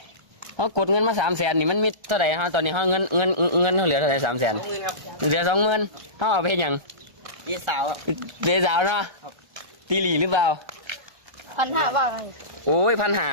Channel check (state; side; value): late; left; 1.4 ms